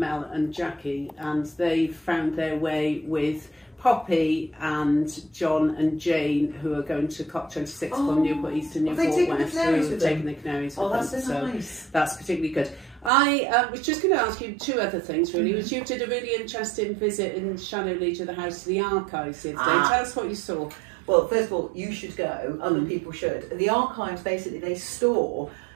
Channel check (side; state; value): left; drops out; at 13.1 s